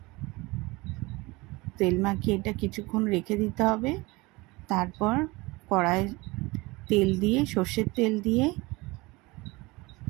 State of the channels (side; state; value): left; quieter; 23.2 dB